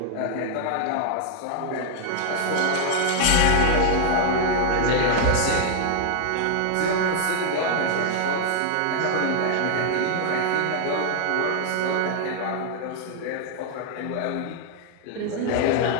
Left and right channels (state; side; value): different; both; correlation 0.00